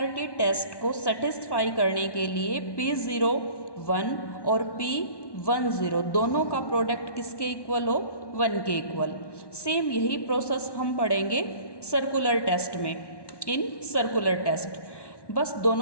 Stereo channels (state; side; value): late; right; 1.1 ms